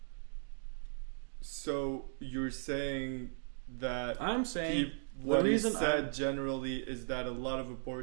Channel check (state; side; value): silent; left; digital silence